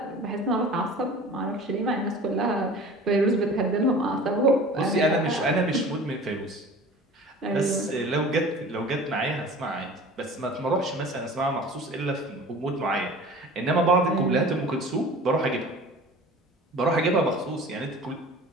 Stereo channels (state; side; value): normal; both; correlation 0.42